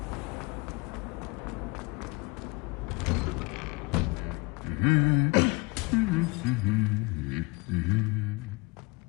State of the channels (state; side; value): quieter; right; 28.6 dB